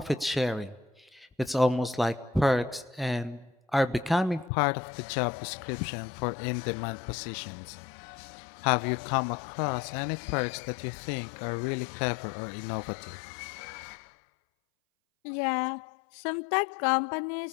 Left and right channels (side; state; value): right; drops out; at 4.5 s